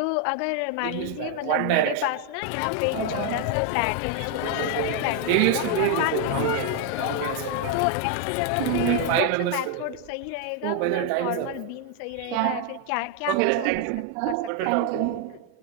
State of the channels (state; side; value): different; both; correlation 0.01